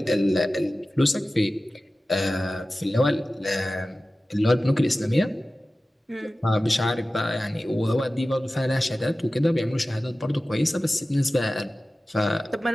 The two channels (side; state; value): both; normal; correlation 0.96